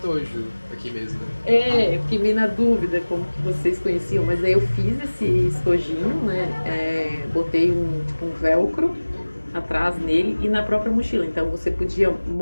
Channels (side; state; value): both; inverted; correlation -1.00